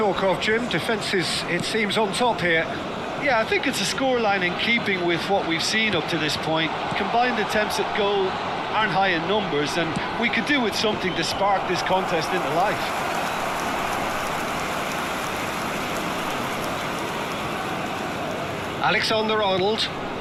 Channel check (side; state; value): both; identical; correlation 1.00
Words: of, Jim. Defence is, it seems, on top here. Yeah, I think it's a scoreline in keeping with what we've seen up to this point. Combined attempts at goal aren't high in numbers, and we could do with something to spark this contest into life. Alexander-Arnold.